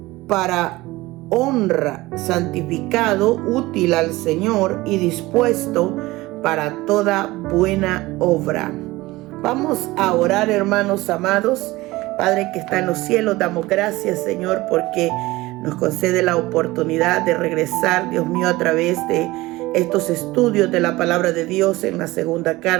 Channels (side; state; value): left; quieter; 19.6 dB